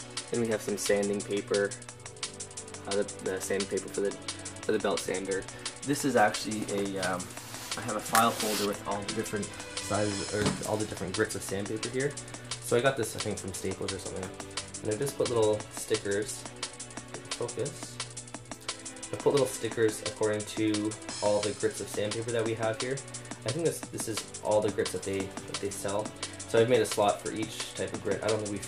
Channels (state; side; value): identical; both; correlation 1.00